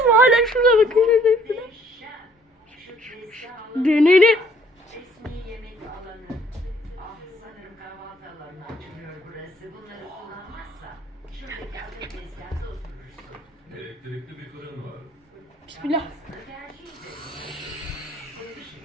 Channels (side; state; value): both; normal; correlation 0.62